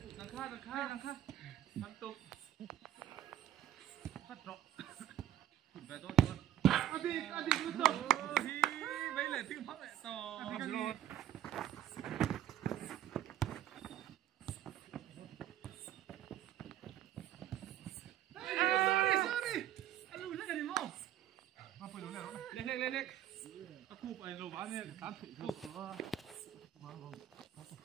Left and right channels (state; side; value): quieter; left; 11.8 dB